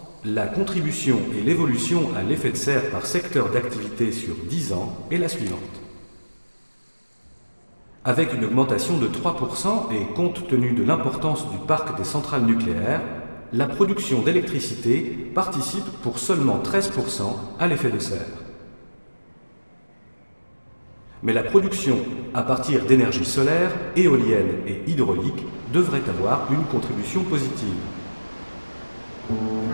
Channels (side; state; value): both; inverted; correlation -1.00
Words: la contribution et l'évolution à l'effet de serre par secteur d'activité sur 10 ans est la suivante. Avec une augmentation de 3% et compte tenu de l'importance du parc des centrales nucléaires, la production d'électricité participe pour seulement 13% à l'effet de serre. Mais la production à partir d'énergie solaire, éolienne et hydraulique devrait avoir une contribution positive.